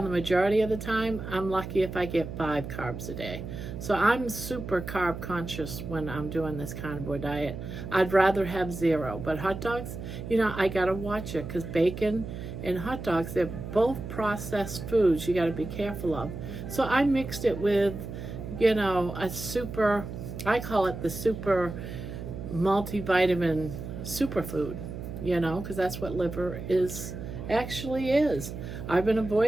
the majority of the time, I'm lucky if I get 5 carbs a day. So I'm super carb conscious when I'm doing this carnivore diet. I'd rather have 0. But hot dogs, I gotta watch it, because bacon and hot dogs, they're both processed foods you gotta be careful of. So I mixed it with, a super, I call it the super multivitamin superfood, because that's what liver actually is. I've been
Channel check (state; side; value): noise; right; hum, 8 dB below the sound